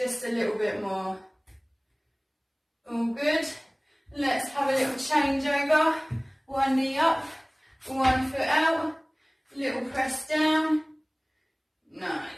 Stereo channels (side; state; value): both; identical; correlation 1.00